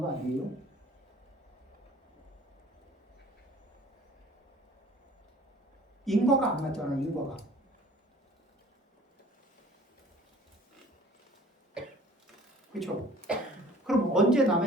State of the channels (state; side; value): normal; both; correlation 0.50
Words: 거 아니에요? 인과가 안 맞잖아, 인과가. 그렇죠? 그럼 언제